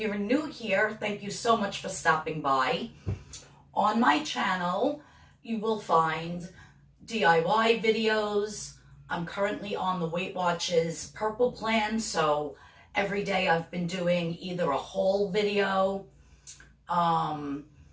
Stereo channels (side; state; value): both; identical; correlation 1.00